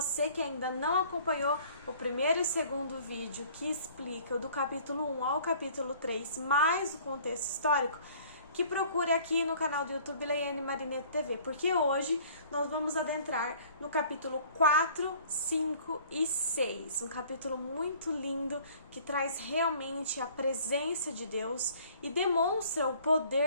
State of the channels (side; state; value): both; inverted; correlation -0.53